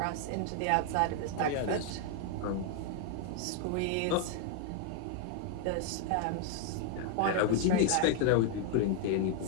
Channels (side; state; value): both; different; correlation 0.00